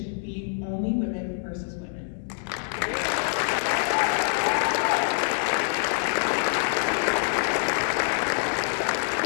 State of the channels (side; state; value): right; silent; 61 dB below the other